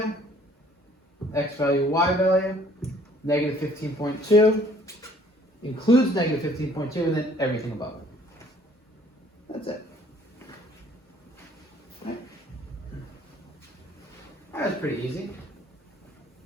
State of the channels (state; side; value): normal; both; correlation 0.58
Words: X value, y value, negative 15.2. Includes negative 15.2 and then everything above it. That's it. Right. That was pretty easy.